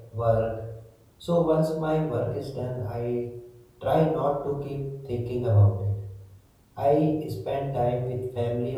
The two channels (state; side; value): identical; both; correlation 1.00